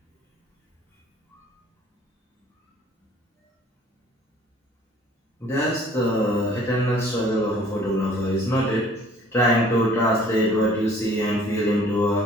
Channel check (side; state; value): both; normal; correlation 0.54